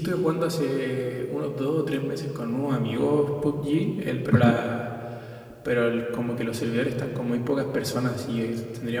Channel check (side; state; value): both; identical; correlation 1.00